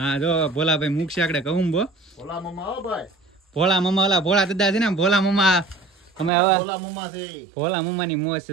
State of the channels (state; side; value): drops out; left; at 6.3 s